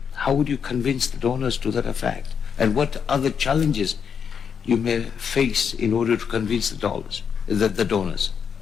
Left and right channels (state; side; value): quieter; right; 7.0 dB